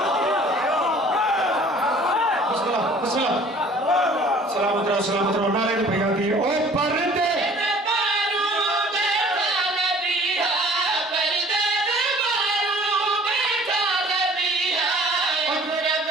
सलामत रहो नाले भैया दिए ओ पर्दे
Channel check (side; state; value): both; normal; correlation 0.51